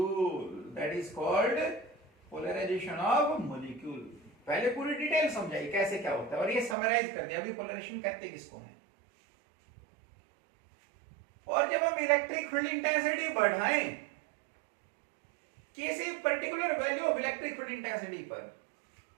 That is called polarization of molecule. पहले पूरी detail समझाई कैसे क्या होता है और ये summarise कर दिया अभी पोलराइजेशन कहते किसको है। और जब हम इलेक्ट्रिक फील्ड इंटेंसिटी बढ़ाएं किसी particular value of electric field intensity पर,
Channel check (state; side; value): drops out; left; at 6.8 s